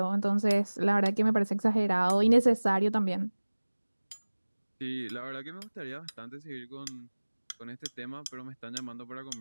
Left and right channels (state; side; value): inverted; both; correlation -1.00